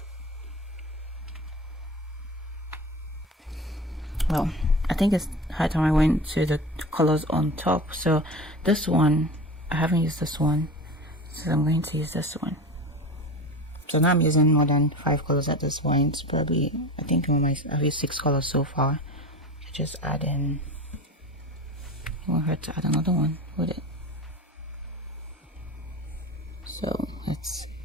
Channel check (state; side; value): normal; both; correlation 0.31